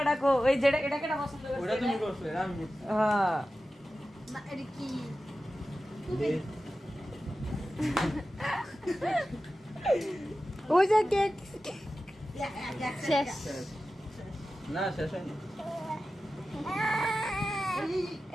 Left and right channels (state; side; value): normal; both; correlation 0.94